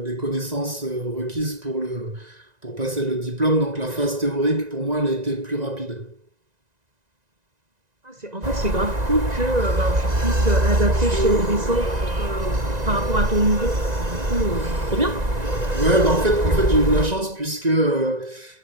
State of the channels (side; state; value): left; late; 1.9 ms